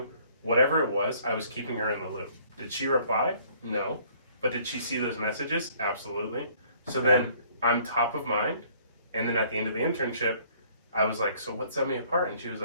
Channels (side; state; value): both; inverted; correlation -0.59